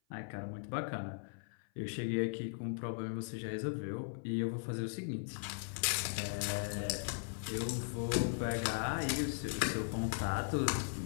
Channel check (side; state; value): right; silent; 52 dB below the other